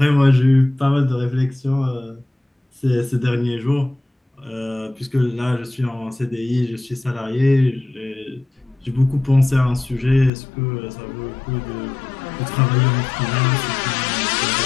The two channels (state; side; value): drops out; right; at 10.3 s